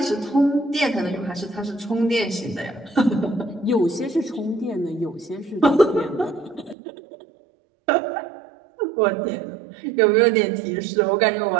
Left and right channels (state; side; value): drops out; left; at 6.8 s